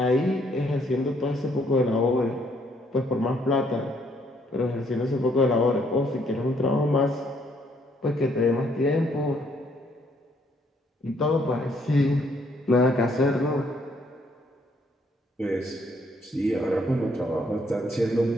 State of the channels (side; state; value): both; normal; correlation 0.68